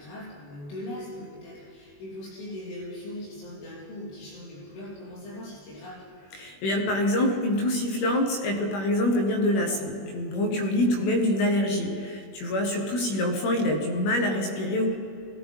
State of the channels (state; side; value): late; right; 21 ms